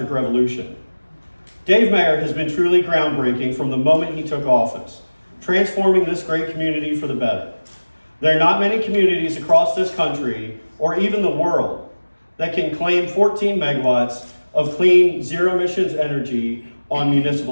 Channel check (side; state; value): both; inverted; correlation -1.00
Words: revolution. Dave Mayer has been truly groundbreaking from the moment he took office, transforming this great community for the better. There are not many communities across this country, or even the world, that can claim 14 megawatts of clean, zero emissions energy on